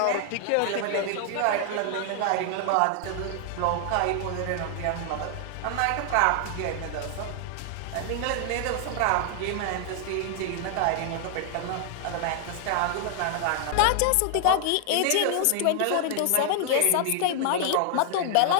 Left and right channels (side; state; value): both; different; correlation 0.00